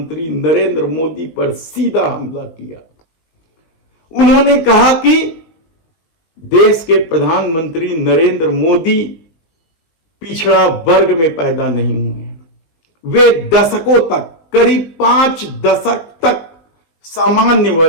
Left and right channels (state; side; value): late; right; 19 ms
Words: नरेंद्र मोदी पर सीधा हमला किया, उन्होंने कहा कि देश के प्रधानमंत्री नरेंद्र मोदी पिछड़ा वर्ग में पैदा नहीं हुए हैं। वे दशकों तक, करीब 5 दशक तक सामान्य